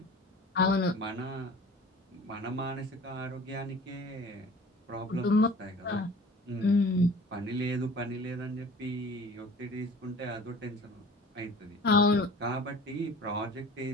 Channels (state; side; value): normal; both; correlation 0.44